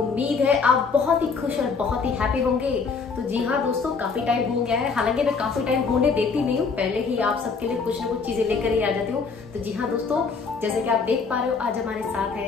है आप बहुत ही खुश और बहुत ही हैप्पी होंगे। तो जी हाँ दोस्तों, काफी टाइम हो गया है, हालांकि मैं काफी टाइम होने देती नहीं हूँ, पहले ही आप सबके लिए कुछ ना कुछ चीजें लेकर ही आ जाती हूँ। तो जी हाँ दोस्तों, जैसे कि आप देख पा रहे हो, आज हमारे साथ है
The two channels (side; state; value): right; quieter; 5.0 dB